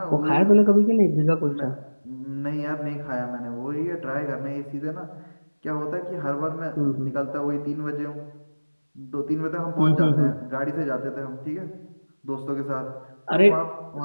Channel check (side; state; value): both; inverted; correlation -1.00